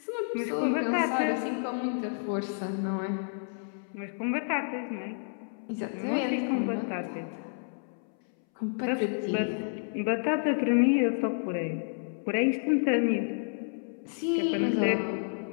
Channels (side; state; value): right; silent; 58 dB below the other